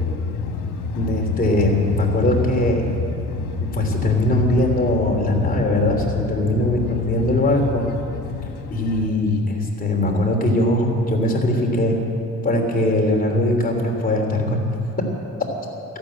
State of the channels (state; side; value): normal; both; correlation 0.41